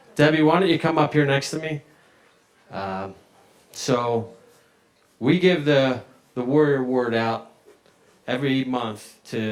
Debbie, why don't you come up here next to me? So we give the Warrior Award out every month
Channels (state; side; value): identical; both; correlation 1.00